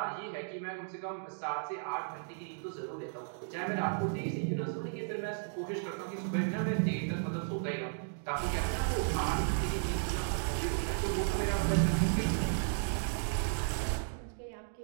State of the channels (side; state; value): left; silent; digital silence